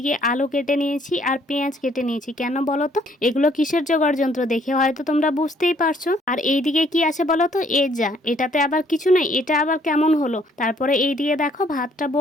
আলু কেটে নিয়েছি আর পেঁয়াজ কেটে নিয়েছি। কেন বলো তো? এগুলো কিসের জোগাড় যন্ত্র দেখে হয়তো তোমরা বুঝতেই পারছো। আর এইদিকে কি আছে বলো তো? এটাতে আবার কিছু নেই, এটা আবার কেমন হলো? তারপরে এইদিকে দেখো ভাতটা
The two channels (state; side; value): normal; both; correlation 0.64